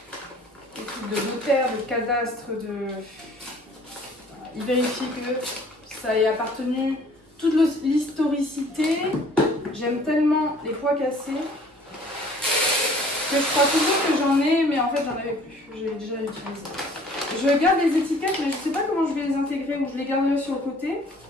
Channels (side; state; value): both; normal; correlation 0.54